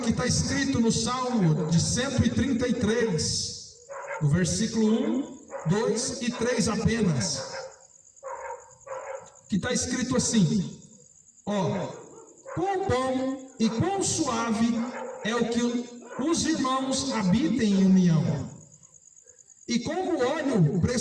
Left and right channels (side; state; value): both; identical; correlation 1.00